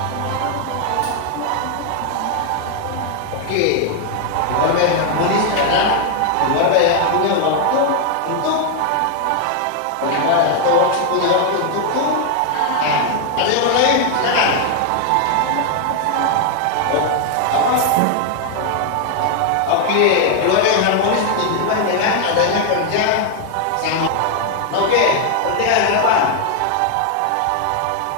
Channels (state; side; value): different; both; correlation 0.00